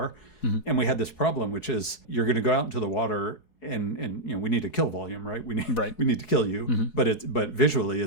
Mm-hmm. And we had this problem, which is you're going to go out into the water and we need a kill volume, right? We need to kill you, mm-hmm. but visually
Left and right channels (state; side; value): late; right; 4.7 ms